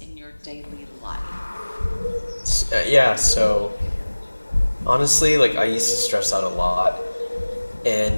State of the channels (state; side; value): inverted; both; correlation -1.00